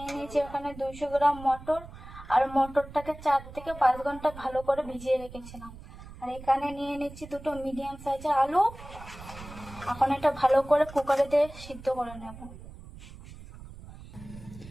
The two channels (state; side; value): noise; right; rumble, 16 dB below the sound